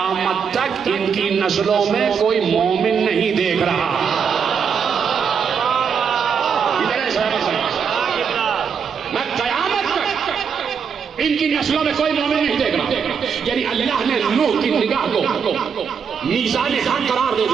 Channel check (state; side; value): quieter; left; 6.6 dB